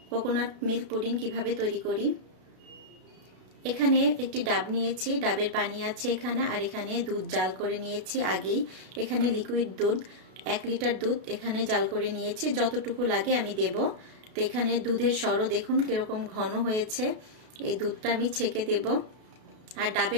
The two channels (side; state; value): left; late; 32 ms